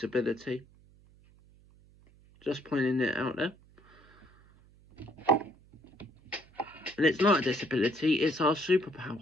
Just pointing it out there. And it's not a disability, it's our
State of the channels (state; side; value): noise; right; hum, 27 dB below the sound